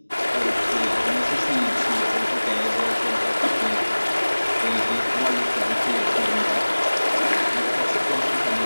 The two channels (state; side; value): inverted; both; correlation -1.00